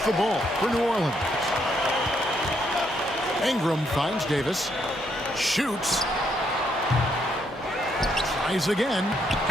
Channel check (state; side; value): normal; both; correlation 0.74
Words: the ball for New Orleans. Ingram finds Davis. Shoots. Tries again.